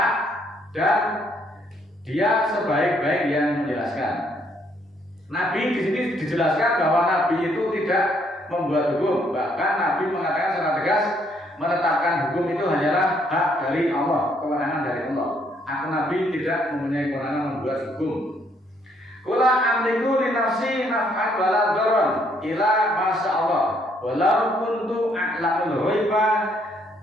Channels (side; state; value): both; normal; correlation 0.69